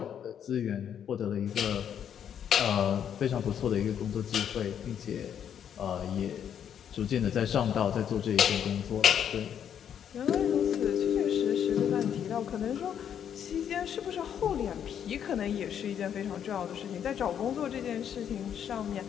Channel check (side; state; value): right; quieter; 8.9 dB